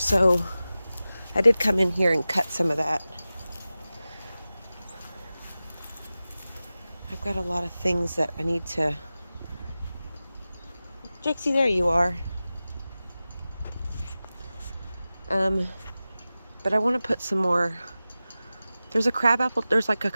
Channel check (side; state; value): both; inverted; correlation -0.96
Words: I did come in here and cut some of that. I've got a lot of things that I need to... Jixie, there you are. But I want to put some more... There's like a